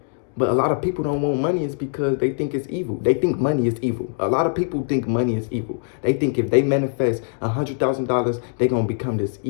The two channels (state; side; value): silent; right; 64 dB below the other